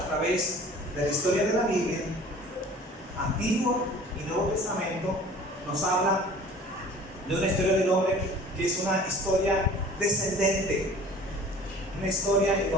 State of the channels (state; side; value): normal; both; correlation 0.46